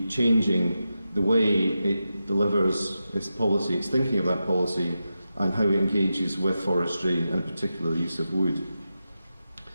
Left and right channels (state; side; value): inverted; both; correlation -0.90